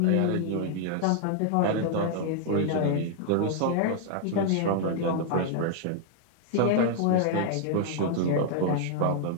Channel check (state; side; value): different; both; correlation 0.00